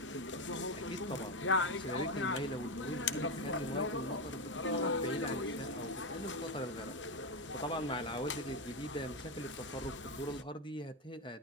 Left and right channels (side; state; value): both; normal; correlation 0.10